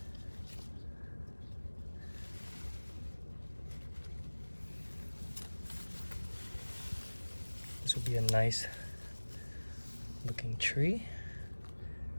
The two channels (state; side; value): inverted; both; correlation -1.00